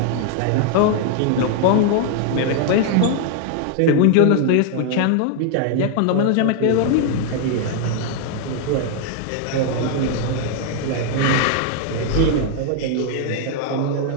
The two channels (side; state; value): both; different; correlation 0.00